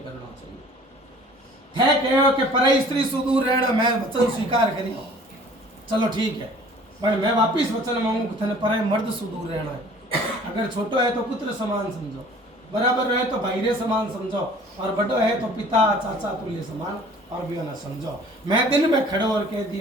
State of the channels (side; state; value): both; normal; correlation 0.50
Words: करना चाहिए थे कहो कि परई स्त्री सुदूर रहना मैं वचन स्वीकार करी चलो ठीक है पर मैं वापिस वचन मांगू कि थने परई मर्द सुदूर रहना है अगर छोटो है तो पुत्र समान समझो बराबर रहे तो भाईरे समान समझो और बड़ो है तो पिता चाचा तुल्य समान और भी ना समझो मैं दिन में खड़ो और कह